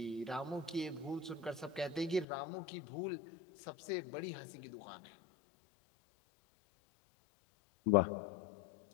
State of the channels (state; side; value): drops out; right; at 2.2 s